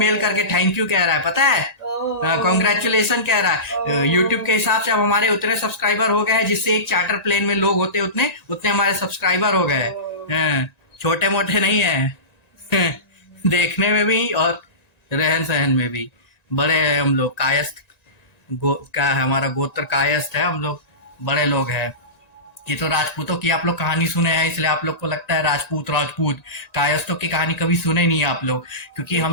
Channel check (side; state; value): right; late; 1.9 ms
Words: करके थैंक यू कह रहा है, पता है, कॉन्ग्रेचुलेशन कह रहा है। यूट्यूब के हिसाब से अब हमारे उतने सब्सक्राइबर हो गए हैं जिससे एक चार्टर प्लेन में लोग होते उतने हमारे सब्सक्राइबर हो गए। छोटे मोटे नहीं है देखने में भी और रहन सहन में भी बड़े हैं हम लोग। कायस्थ क्या है, हमारा गोत्र कायस्थ है, हम लोग बड़े लोग हैं। ये तो राजपूतों की आप लोग कहानी सुने हैं, इसलिए आप लोग को लगता है राजपूत कायस्थों की कहानी कभी सुने नहीं है आप लोग, क्योंकि